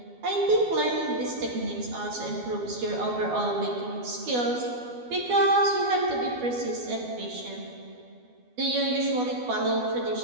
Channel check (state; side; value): late; left; 12 ms